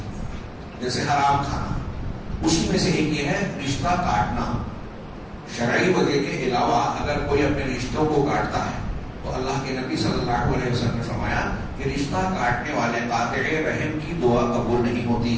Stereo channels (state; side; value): identical; both; correlation 1.00